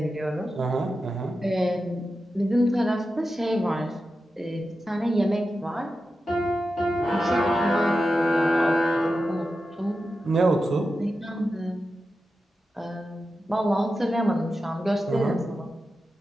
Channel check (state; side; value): normal; both; correlation 0.91